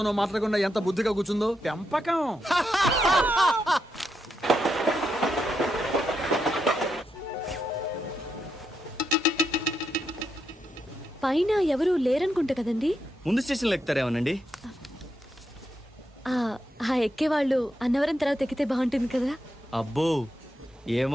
మాట్లాడకుండా ఎంత బుద్ధిగా కూర్చుందో. పెంపకం. పైన ఎవరు లేరనుకుంటా కదండి? ముందు స్టేషన్లో ఎక్కుతారేమోనండి. ఆ ఎక్కేవాళ్ళు అన్నవరం తర్వాత ఎక్కితే బాగుంటుంది కదా. అబ్బో,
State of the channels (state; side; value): normal; both; correlation 0.83